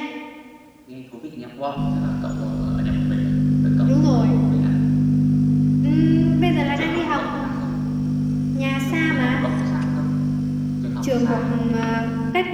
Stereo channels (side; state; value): both; identical; correlation 1.00